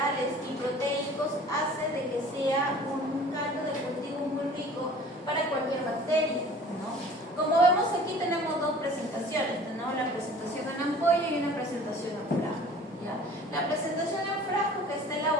y proteicos hace de que sea un caldo de cultivo muy rico para cualquier bacteria, ¿no? Como vemos aquí tenemos dos presentaciones, tenemos la presentación en ampolla y una presentación en frasco, ¿ya? La presentación en frasco, que está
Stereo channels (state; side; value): normal; both; correlation 0.47